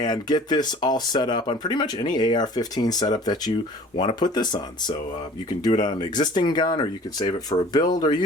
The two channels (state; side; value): normal; both; correlation 0.48